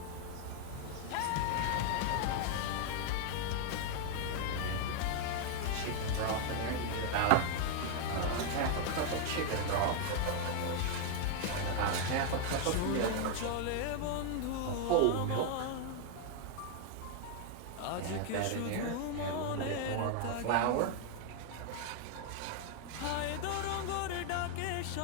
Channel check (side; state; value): both; different; correlation 0.00